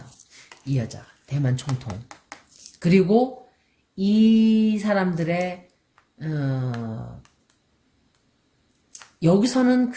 이 여자 대만 총통. 그리고 이 사람들의 여기서는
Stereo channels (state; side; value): identical; both; correlation 1.00